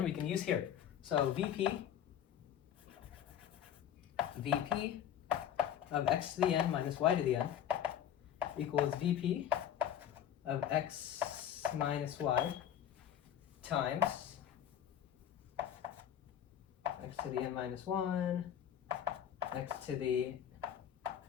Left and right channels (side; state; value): right; quieter; 9.8 dB